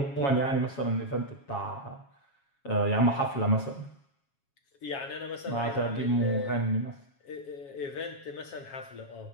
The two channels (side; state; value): right; late; 7.3 ms